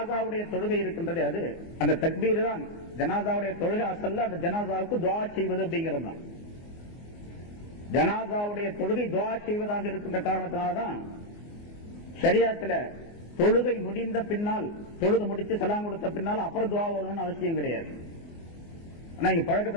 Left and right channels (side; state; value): right; late; 24 ms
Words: தொழுகை இருக்கின்றது, அது அந்த தக்பீர் தான் ஜனாசாவுடைய தொழுகை. அசல்ல அந்த ஜனாசாவுக்கு துஆ செய்வது அப்படிங்கிறது தான். ஜனாசாவுடைய தொழுகை துஆ செய்வதாக இருக்கின்ற காரணத்தினால்தான் ஷரியத்துல தொழுகை முடிந்த பின்னால், தொழுது முடிச்சு சலாம் கொடுத்த பின்னால் அப்புறம் துஆ ஓதணும்னு அவசியம் கிடையாது. ஆனா இங்க